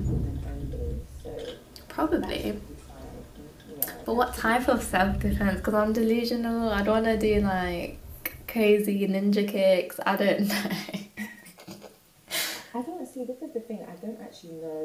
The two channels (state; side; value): identical; both; correlation 1.00